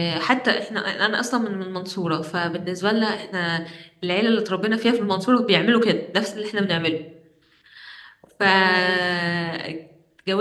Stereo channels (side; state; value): both; identical; correlation 1.00